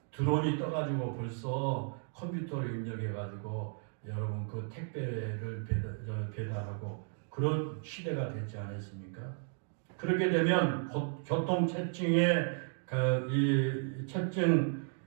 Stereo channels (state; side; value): silent; left; 55 dB below the other